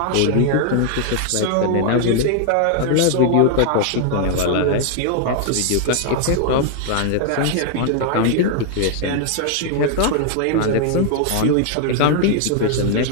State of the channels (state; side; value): different; both; correlation 0.00